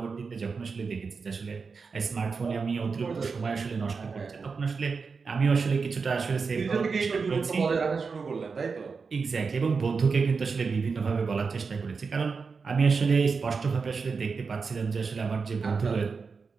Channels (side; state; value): left; quieter; 5.0 dB